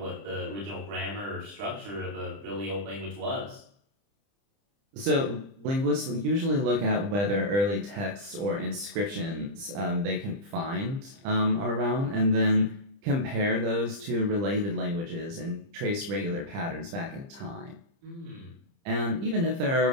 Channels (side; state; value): left; late; 30 ms